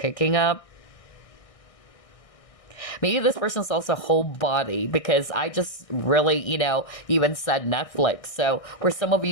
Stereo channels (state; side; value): late; right; 1.6 ms